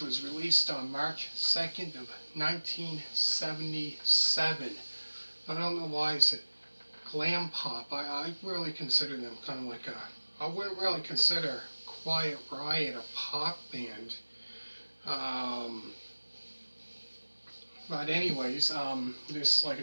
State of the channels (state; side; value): inverted; both; correlation -1.00